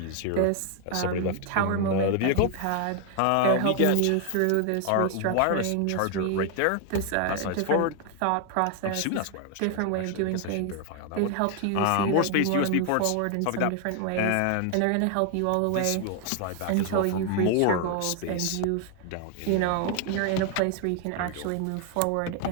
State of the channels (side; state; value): both; different; correlation 0.00